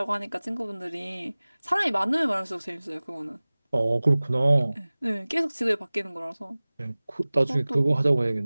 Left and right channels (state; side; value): inverted; both; correlation -0.99